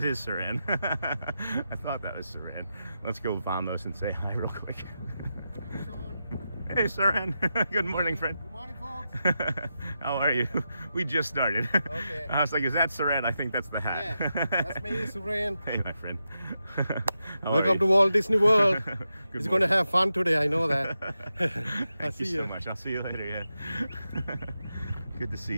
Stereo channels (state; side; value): inverted; both; correlation -0.88